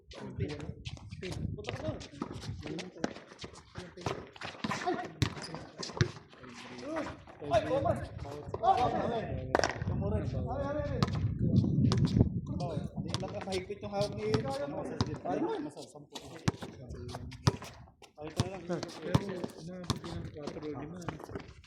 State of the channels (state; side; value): identical; both; correlation 1.00